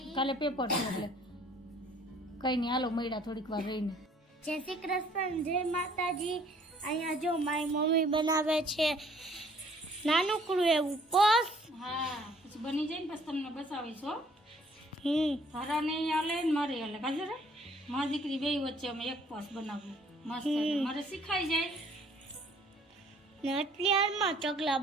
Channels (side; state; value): both; normal; correlation 0.59